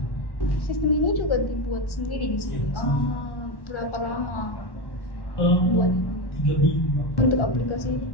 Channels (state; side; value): late; right; 1.1 ms